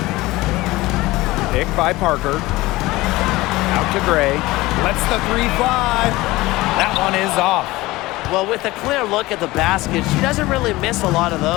Pick by Parker. Out to Gray. Lets the three fly. That one is off. Well, with a clear look at the basket, she doesn't really miss a lot of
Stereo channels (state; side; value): quieter; right; 19.5 dB